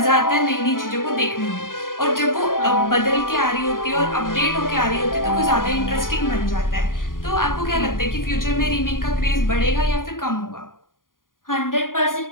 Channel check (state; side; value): late; right; 0.90 ms